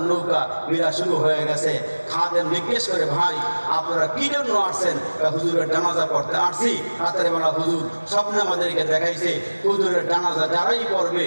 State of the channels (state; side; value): inverted; both; correlation -1.00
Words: নৌকা বিরা শুরু হয়ে গেছে। খাদেম জিজ্ঞেস করে, ভাই আপনারা কি জন্য আসছেন? হুজুরের জানাজা পড়তে আসছি। রাতের বেলা হুজুর স্বপ্নে আমাদেরকে দেখাইছে হুজুরের জানাজা যারাই পড়বে